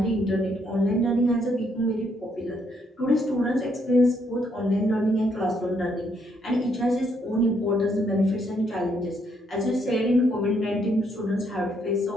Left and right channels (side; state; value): both; normal; correlation 0.73